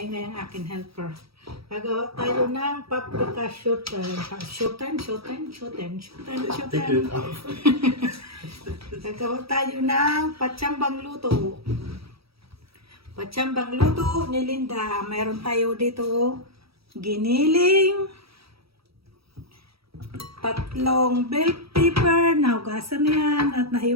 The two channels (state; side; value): late; left; 0.76 ms